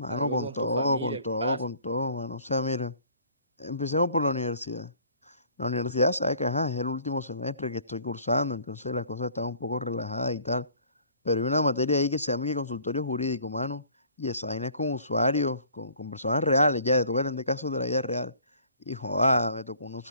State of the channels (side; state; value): both; inverted; correlation -0.54